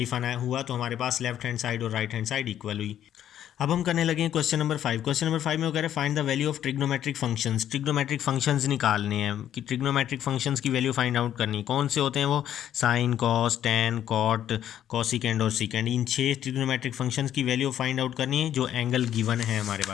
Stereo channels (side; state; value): right; quieter; 10.8 dB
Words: हुआ, तो हमारे पास लेफ्ट हैंड साइड और राइट हैंड साइड इक्वल हुई। अब हम करने लगे क्वेश्चन नंबर 5। क्वेश्चन नंबर 5 में वो कह रहे हैं find the value of trigonometric functions. Trigonometric functions निकालने हैं कि ट्रिग्नोमेट्रिक फंक्शंस की वैल्यू फाइंड आउट करनी। कौन से होते हैं वो, sine, cos, tan, cot, cosecant और सीकेंड। इन 6 ट्रिग्नोमेट्रिक फंक्शंस की वैल्यू फाइंड आउट करनी है जो एंगल गिवन है हमारे